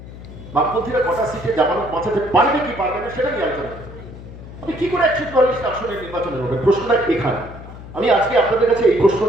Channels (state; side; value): noise; left; hum, 14 dB below the sound